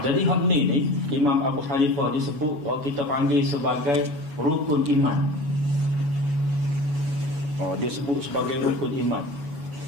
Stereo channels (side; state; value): left; late; 7.1 ms